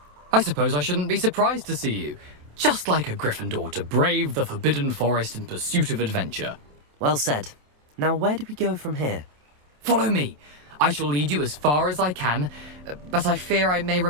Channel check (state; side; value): late; left; 27 ms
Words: I suppose I shouldn't be surprised to see you. Just like a Gryffindor to brave the Forbidden Forest in pursuit of adventure. Well said. Now where do we go from here? Follow me. I shall lead you as far as I can, but I fear I may